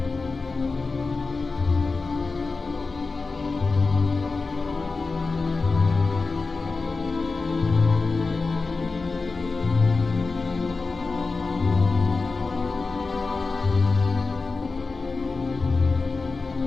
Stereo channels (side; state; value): right; quieter; 4.0 dB